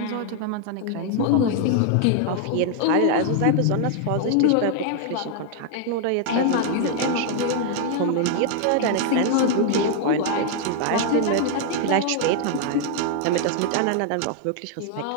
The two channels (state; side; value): different; both; correlation 0.00